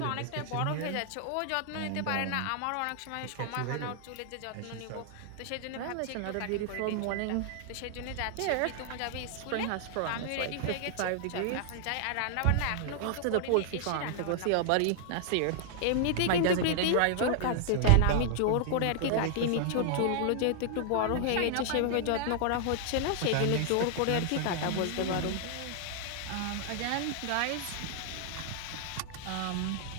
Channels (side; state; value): both; different; correlation 0.00